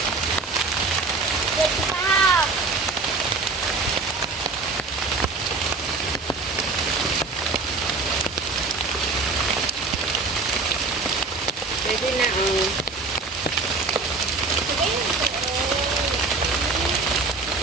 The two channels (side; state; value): left; quieter; 3.8 dB